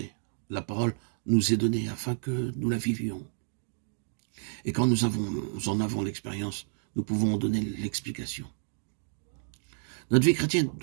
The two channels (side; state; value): left; silent; digital silence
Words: La parole nous est donnée afin que nous la vivions. Et quand nous en avons l'expérience, nous pouvons en donner l'explication. Notre vie chrétienne